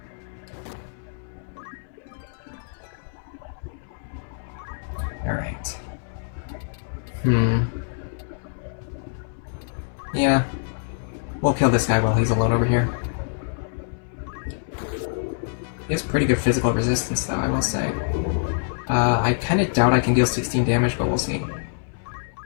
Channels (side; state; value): right; silent; 62 dB below the other